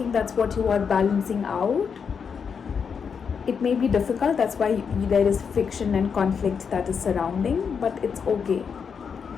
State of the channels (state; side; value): quieter; right; 6.4 dB